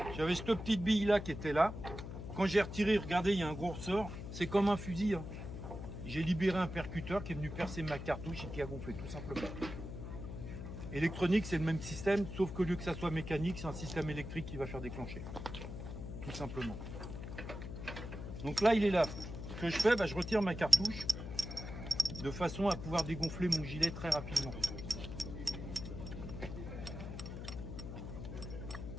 J'avais cette petite bille là qui était là. Quand j'ai retiré, regardez, il y a un gros ressort. C'est comme un fusil. Hein. J'ai libéré un percuteur qui est venu percer ma cartouche et qui a gonflé, tout simplement. Électronique, c'est le même système, sauf qu'au lieu que ça soit mécanique, c'est un système électrique qui va faire déclencher. Tout simplement. Donc là, il est là. Ce que je fais, bah, je retire ma cartouche de façon à pouvoir dégonfler mon gilet très rapidement.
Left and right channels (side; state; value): left; noise; hum, 8 dB below the sound